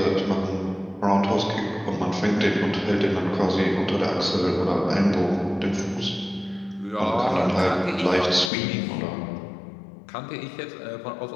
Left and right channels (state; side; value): drops out; right; at 8.5 s